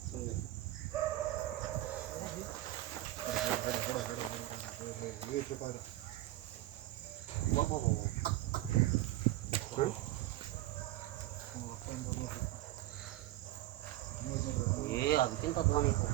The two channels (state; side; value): quieter; left; 16.0 dB